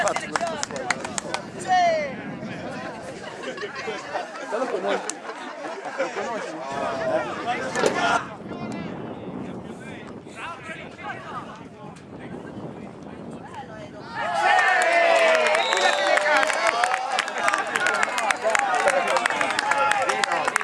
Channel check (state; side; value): identical; both; correlation 1.00